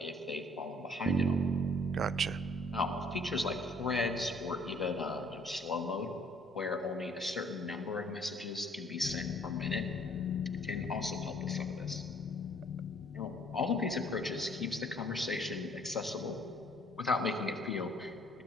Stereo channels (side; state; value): both; normal; correlation 0.60